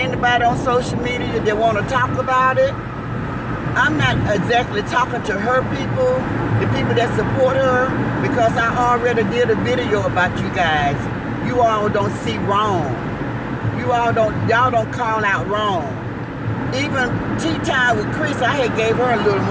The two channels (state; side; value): identical; both; correlation 1.00